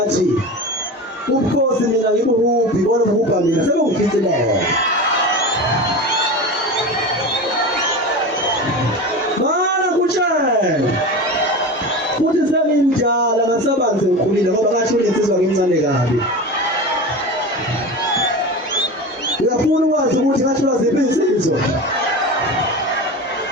ubukhosi mina ngibuhuphi bona ubupha mina sebengifithileyo mana kutshela futhi sengimdala ngasabanzi ngikhulile ngoba ngasho insizwa ngincane kabi uyafuna ukwazi ukuthi ngasho ziphi insizwa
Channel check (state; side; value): normal; both; correlation 0.28